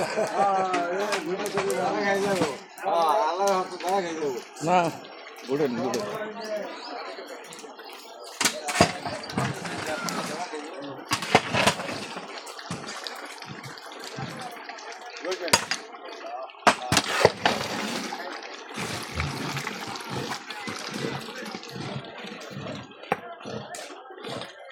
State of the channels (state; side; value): identical; both; correlation 1.00